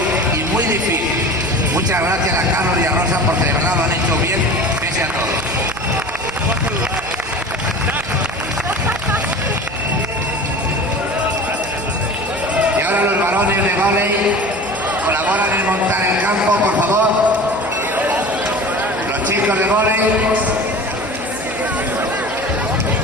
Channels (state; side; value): noise; right; hum, 19 dB below the sound